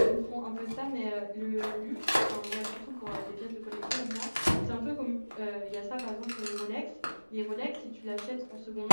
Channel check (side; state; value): both; inverted; correlation -1.00